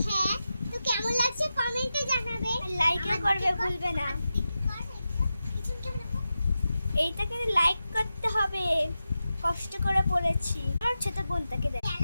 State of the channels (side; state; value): both; inverted; correlation -0.91